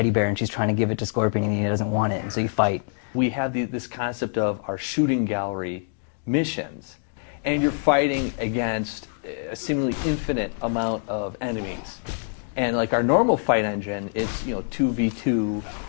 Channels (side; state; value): right; silent; digital silence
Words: bear and she's trying to give it to Scorpion and he doesn't want it, and so you fight. We had this concept of our shooting gallery missions. And you're fighting against a seemingly infinite amount of enemies. And like our normal fight engine, it's 2v2